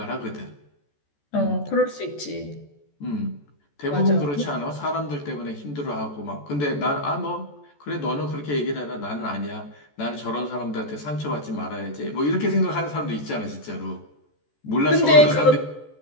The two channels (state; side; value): late; right; 14 ms